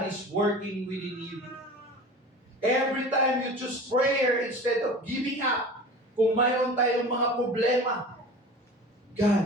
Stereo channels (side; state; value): both; normal; correlation 0.37